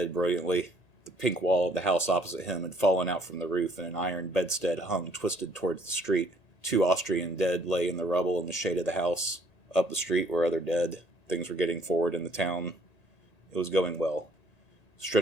brilliantly. The pink wall of the house opposite him had fallen out from the roof, and an iron bedstead hung twisted towards the street. 2 Austrian dead lay in the rubble in the shade of the house. Up the street were other dead. Things were getting forward in the town. It was going well.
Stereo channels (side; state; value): right; late; 1.9 ms